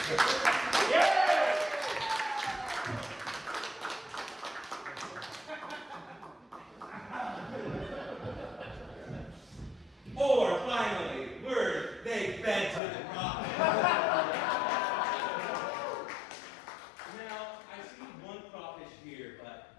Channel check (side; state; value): right; drops out; at 12.8 s